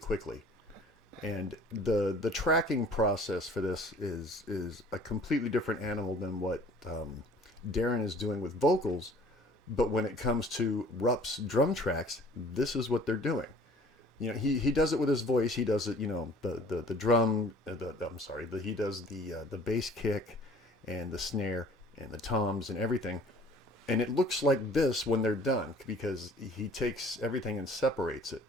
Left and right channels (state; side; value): normal; both; correlation 0.51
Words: And the tracking process for this is a completely different animal than what Darren is doing with vocals. But when it comes to Rupp's drum tracks, this is what they're doing. You know, he does it with his voice. He does it, you know, the drum. He does the bass kick, and the snare, and the toms, and everything. And it looks like this when they're done because he takes everything and separates it.